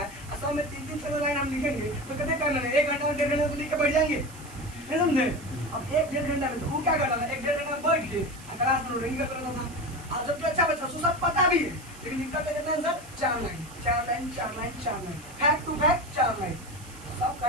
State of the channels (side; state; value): right; noise; hiss, 19 dB below the sound